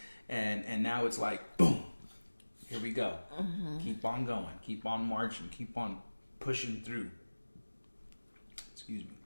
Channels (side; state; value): both; inverted; correlation -1.00